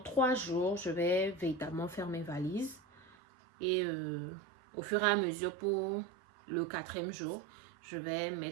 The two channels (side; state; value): left; drops out; at 3.2 s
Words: 3 jours, je vais véritablement faire mes valises. Et au fur et à mesure, pour le 4e jour, je vais